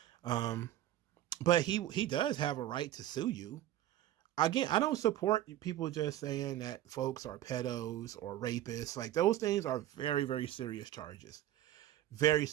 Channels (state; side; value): quieter; left; 13.1 dB